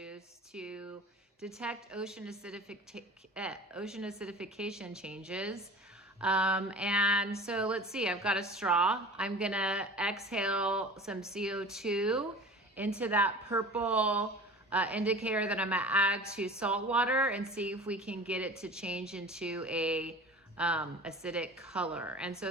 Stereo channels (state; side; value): normal; both; correlation 0.39